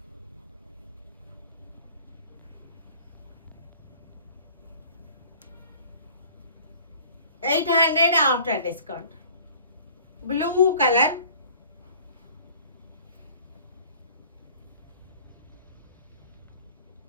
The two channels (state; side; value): inverted; both; correlation -0.49